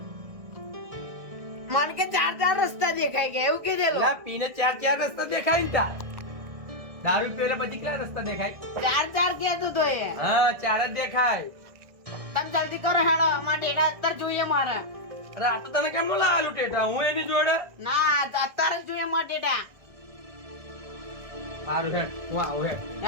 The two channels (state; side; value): late; left; 1.6 ms